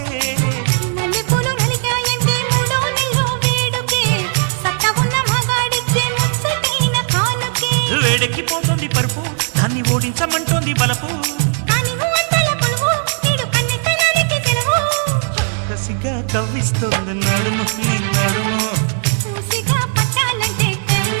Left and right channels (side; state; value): left; silent; 56 dB below the other